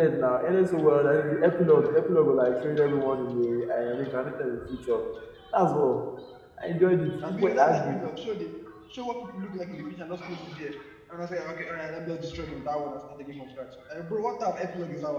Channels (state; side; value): identical; both; correlation 1.00